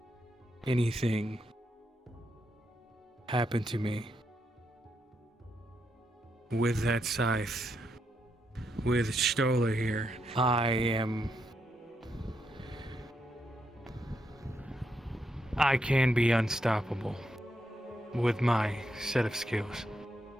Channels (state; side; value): normal; both; correlation 0.81